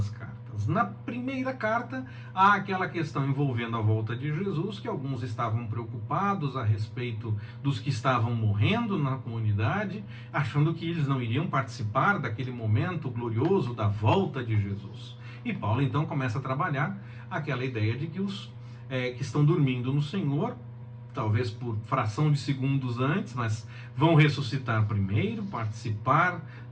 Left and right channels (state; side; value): identical; both; correlation 1.00